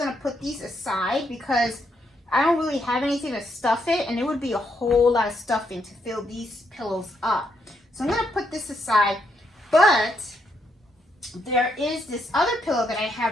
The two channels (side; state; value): both; normal; correlation 0.77